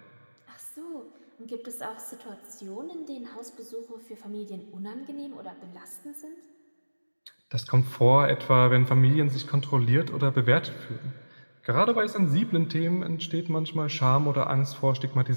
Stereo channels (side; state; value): both; inverted; correlation -1.00